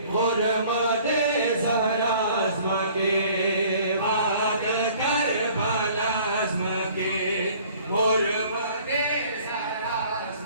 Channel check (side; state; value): both; inverted; correlation -0.53